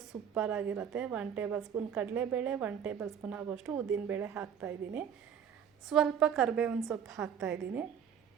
ಸೂಪರಾಗಿರುತ್ತೆ. 1 ಟೇಬಲ್ ಸ್ಪೂನ್ ಕಡಲೆಬೇಳೆ, 1 ಟೇಬಲ್ ಸ್ಪೂನ್ ಆಗೋಷ್ಟು ಉದ್ದಿನಬೇಳೆ ಹಾಕ್ತಾಯಿದ್ದೀನಿ. ಸ್ವಲ್ಪ ಕರಿಬೇವಿನ ಸೊಪ್ಪು ಹಾಕ್ತಾಯಿದ್ದೀನಿ.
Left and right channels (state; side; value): quieter; left; 8.1 dB